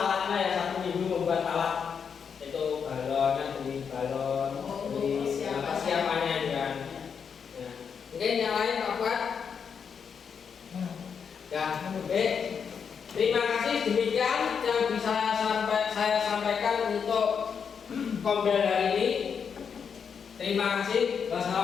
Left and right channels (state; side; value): quieter; right; 6.7 dB